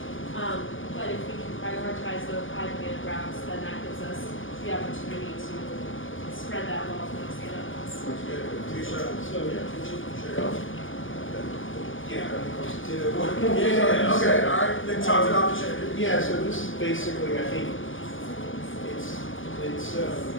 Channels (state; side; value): late; right; 0.57 ms